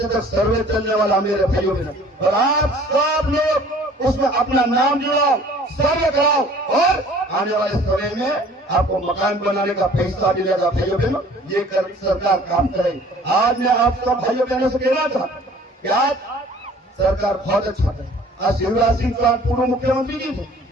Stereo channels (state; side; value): normal; both; correlation 0.51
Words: तक सर्वे चलने वाला मेरे भाइयों में। और आप सब लोग उसमें अपना नाम जुड़ाओ, सर्वे कराओ और आने वाले समय में आपको मकान बनाने का पैसा मिलेगा भाइयों बहनों। ये सरकार काम करे। आज मैं आप सब भाइयों बहनों से कहना चाहता हूँ कि आज सरकार बहुत अच्छा है। आज शिवराज सिंह चौहान पूर्व मुख्यमंत्री जी थे,